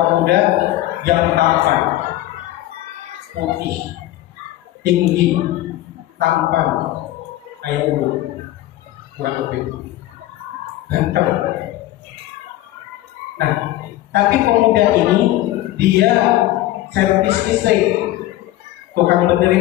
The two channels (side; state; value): right; quieter; 15.1 dB